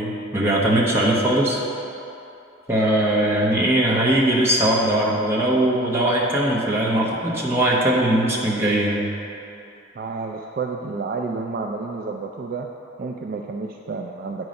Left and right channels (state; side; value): normal; both; correlation 0.44